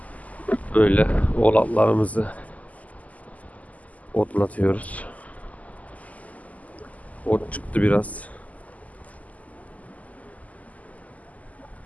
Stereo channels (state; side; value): late; right; 0.074 ms